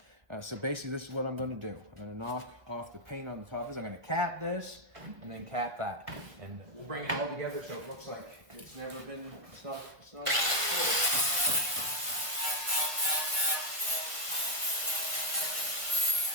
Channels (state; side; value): late; left; 1.3 ms